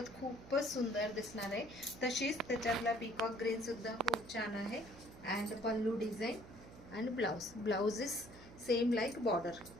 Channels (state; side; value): noise; right; hum, 18 dB below the sound